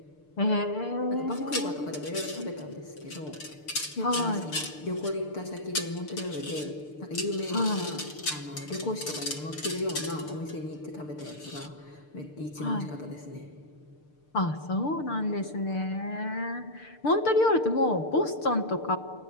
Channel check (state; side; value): late; right; 6.7 ms